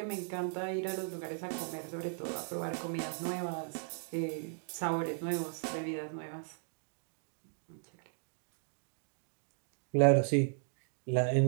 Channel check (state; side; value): silent; left; digital silence